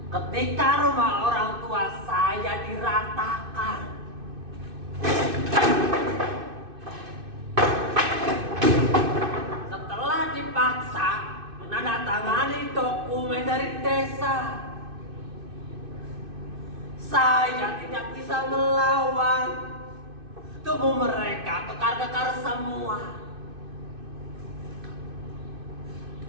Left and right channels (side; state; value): left; late; 2.6 ms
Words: Ketika rumah orang tua saya diratakan, dipaksa menandatangani dokumen dari desa. Saya tidak bisa melawan. Tubuh mereka kekar-kekar semua.